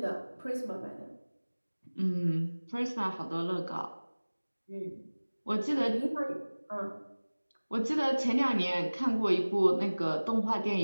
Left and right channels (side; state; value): both; inverted; correlation -1.00